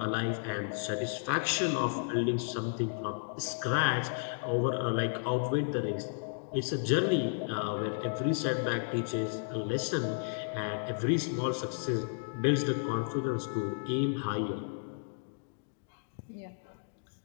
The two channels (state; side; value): silent; right; digital silence